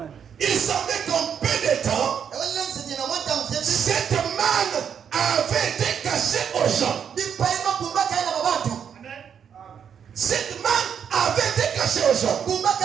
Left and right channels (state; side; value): quieter; left; 7.9 dB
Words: Il semblait qu'en peu de temps, Ewele nsije na wanta mfyebi. cette manne avait été cachée aux gens. Di paima bumba kaya na babatu. Cette manne avait été cachée aux gens. Bumba